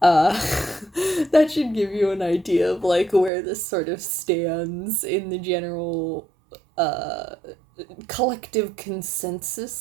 that should give you an idea of, like, where this sort of stands in the general, collective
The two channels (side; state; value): left; drops out; at 3.3 s